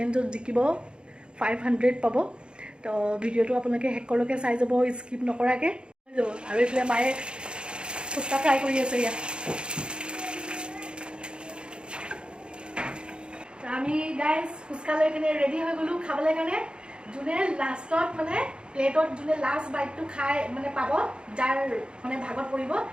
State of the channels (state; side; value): late; left; 0.053 ms